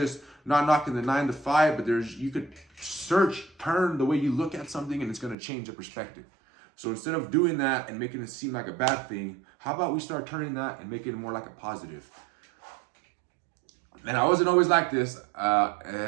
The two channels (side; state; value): left; drops out; at 5.4 s